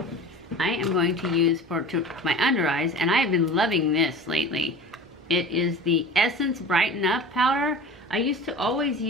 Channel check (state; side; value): normal; both; correlation 0.37